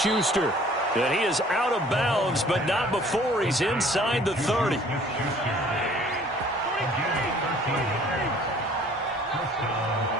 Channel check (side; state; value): both; normal; correlation 0.54